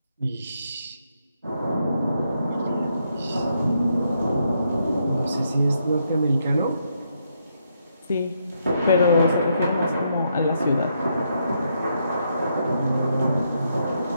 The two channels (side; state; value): both; inverted; correlation -0.77